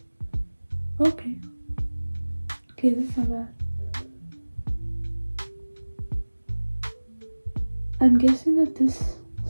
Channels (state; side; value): inverted; both; correlation -1.00